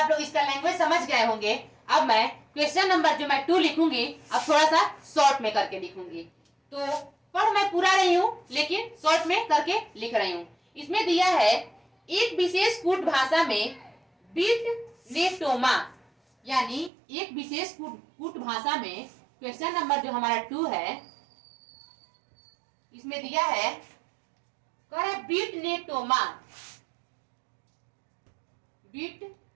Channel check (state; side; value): drops out; left; at 16.9 s